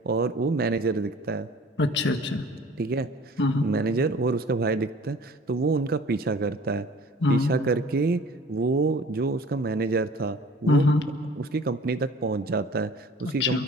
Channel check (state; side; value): normal; both; correlation 0.47